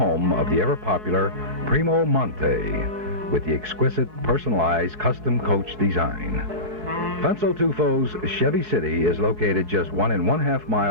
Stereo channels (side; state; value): left; late; 5.2 ms